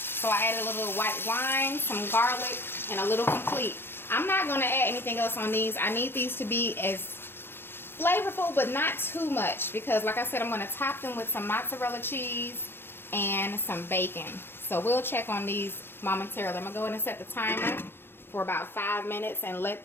I added a little white wine, some garlic, and a little complete. I'm not going to add anything else on these. I need these to be as flavorful, but not too much. Because like I said, I'm going to top them with some mozzarella cheese and some bacon. So we'll check on these momentarily. I'm going to go ahead and set the timer for about 5 minutes and let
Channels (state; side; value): late; right; 0.10 ms